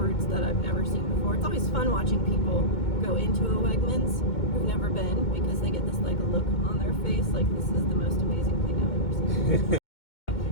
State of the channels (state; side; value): late; right; 2.2 ms